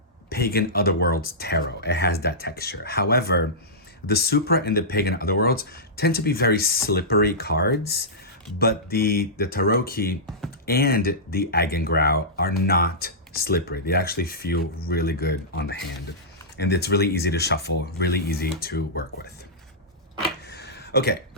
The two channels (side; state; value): both; normal; correlation -0.14